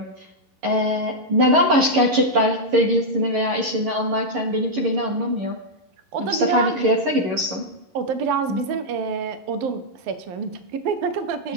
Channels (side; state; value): left; late; 11 ms